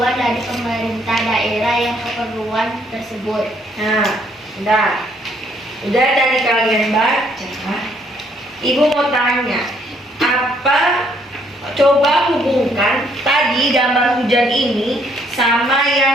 dari pemerintah daerah yang keperluan tersebut. Nah, udah dari kalian baca. Ibu mau tanya, apa? Coba hubungkan tadi gambar hujan ini sama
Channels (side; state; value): both; normal; correlation 0.67